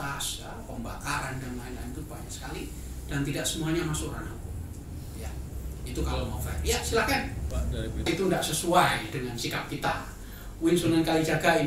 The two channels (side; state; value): both; identical; correlation 1.00